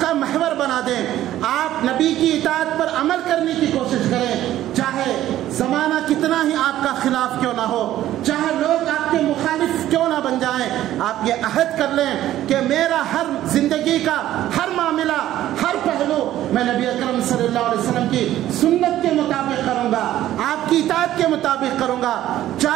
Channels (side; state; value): left; quieter; 13.3 dB